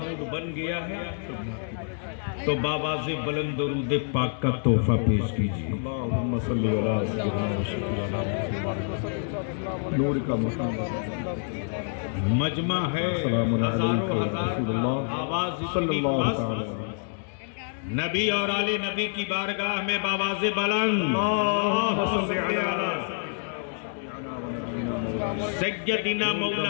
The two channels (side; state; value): right; silent; digital silence